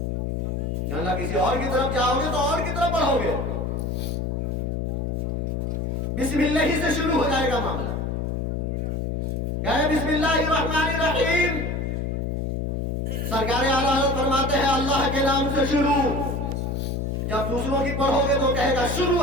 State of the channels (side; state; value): left; noise; hum, 1 dB below the sound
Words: اللہ کسی اور کی طرف جاؤ گے تو اور کی طرف بڑھو گے۔ بسم اللہ سے شروع ہو جائے گا معاملہ۔ کیا ہے؟ بسم اللہ الرحمن الرحیم۔ سرکار اعلیٰ حضرت فرماتے ہیں اللہ کے نام سے شروع۔ جب دوسروں کی پڑھو گے تو کہے گا شروع